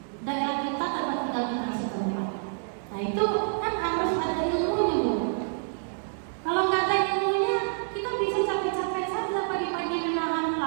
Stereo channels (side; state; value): left; silent; digital silence